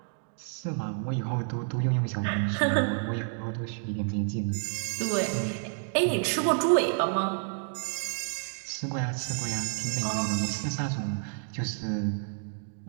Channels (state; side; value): silent; left; 58 dB below the other